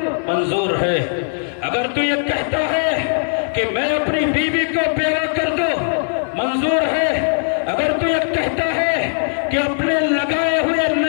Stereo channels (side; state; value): right; silent; digital silence